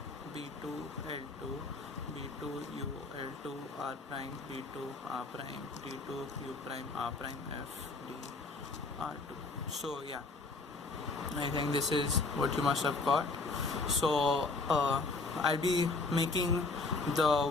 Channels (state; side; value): quieter; right; 3.6 dB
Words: B2 L2 B2 U L2 R prime, B2 R prime, D2 U prime R prime, F D R2. So yeah, I think this is what you must have got. So I'll be making the